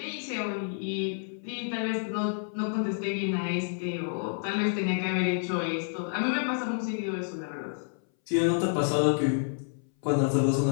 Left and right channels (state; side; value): silent; right; 58 dB below the other